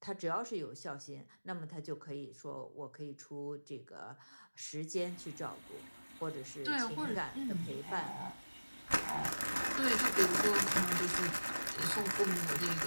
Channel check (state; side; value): inverted; both; correlation -1.00